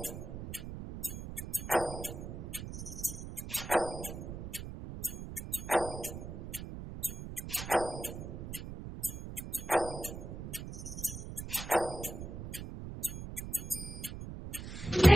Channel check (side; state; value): right; noise; rumble, 8 dB below the sound